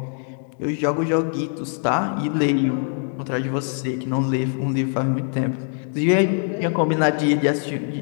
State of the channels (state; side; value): silent; right; 56 dB below the other